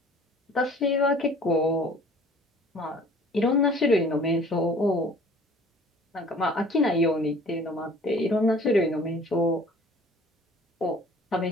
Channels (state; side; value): normal; both; correlation 0.50